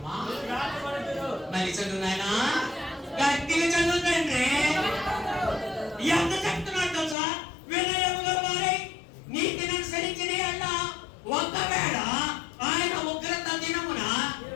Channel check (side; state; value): right; drops out; at 7.2 s